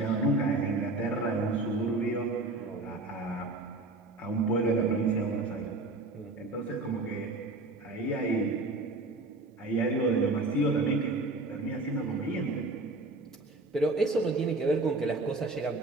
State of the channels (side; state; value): left; quieter; 3.1 dB